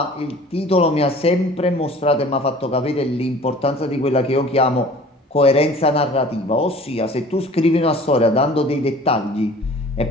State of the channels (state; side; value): normal; both; correlation 0.47